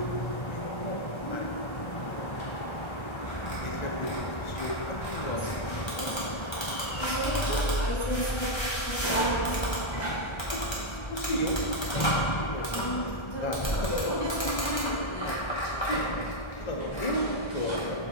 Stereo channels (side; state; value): right; late; 1.3 ms